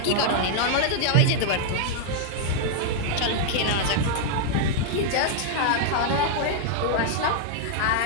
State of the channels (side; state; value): both; different; correlation -0.01